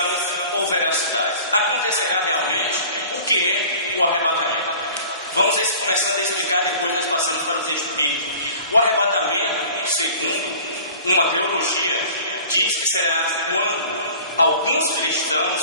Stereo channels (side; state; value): both; inverted; correlation -0.44